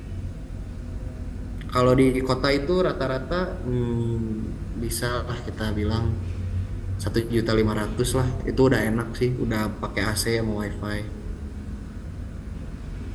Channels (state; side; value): identical; both; correlation 1.00